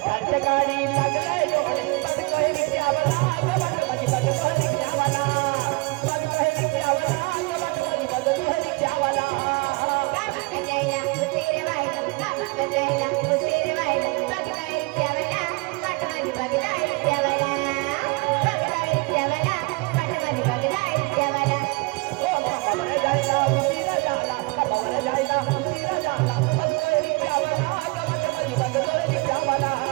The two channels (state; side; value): quieter; left; 27.3 dB